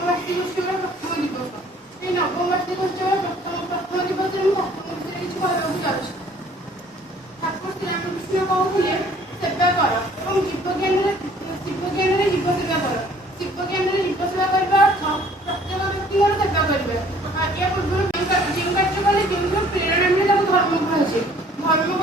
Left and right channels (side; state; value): both; normal; correlation 0.56